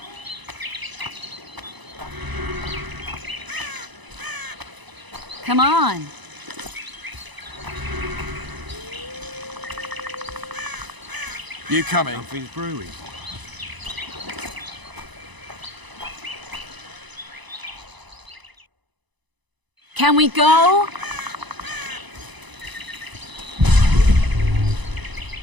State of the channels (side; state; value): left; late; 1.0 ms